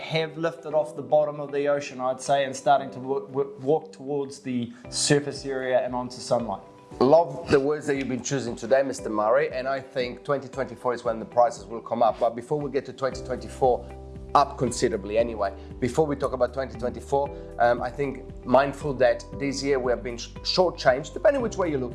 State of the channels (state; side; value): identical; both; correlation 1.00